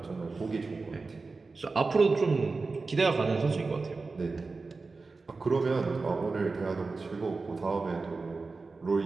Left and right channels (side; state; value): left; quieter; 4.0 dB